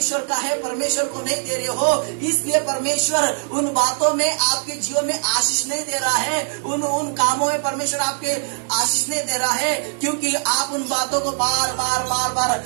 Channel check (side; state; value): left; silent; 60 dB below the other